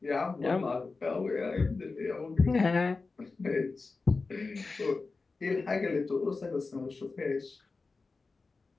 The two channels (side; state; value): right; quieter; 4.0 dB